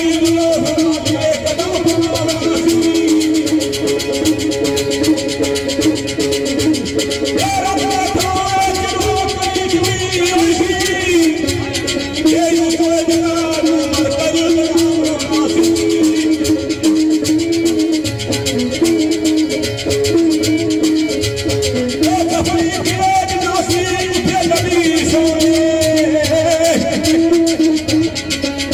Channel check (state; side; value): identical; both; correlation 1.00